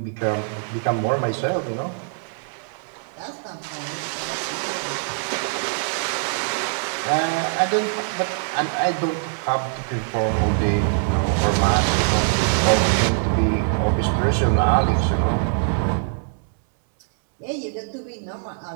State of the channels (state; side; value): silent; left; 64 dB below the other